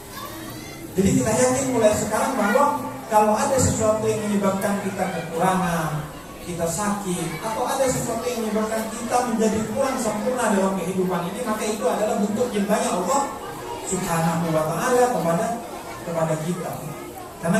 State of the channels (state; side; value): identical; both; correlation 1.00